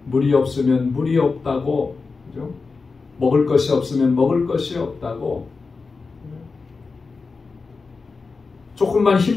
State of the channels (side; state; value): right; quieter; 4.4 dB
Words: 물이 없으면 물이 없다고, 그죠? 먹을 것이 없으면 먹을 것이 없다고, 조금만